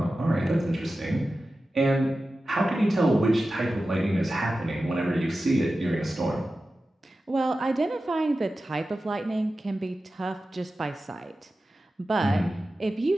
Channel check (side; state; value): both; normal; correlation 0.94